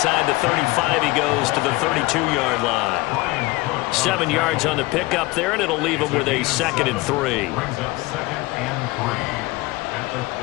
the 35 he goes to the 32-yard line. 7 yards on the pickup there, and it'll leave him with a second and 3. Brings up second and 3 at the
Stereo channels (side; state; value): right; quieter; 21.3 dB